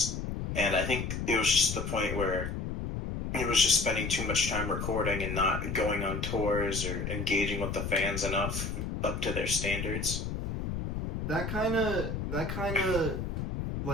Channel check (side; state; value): left; noise; rumble, 4 dB below the sound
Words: And I think it was just the point where he was just spending too much time recording and not going on tours or engaging with the fans enough up to their standards. That kind of